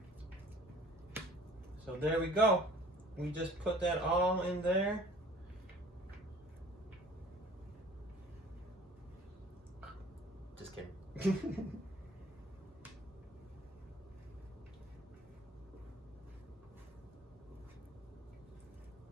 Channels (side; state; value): both; normal; correlation 0.50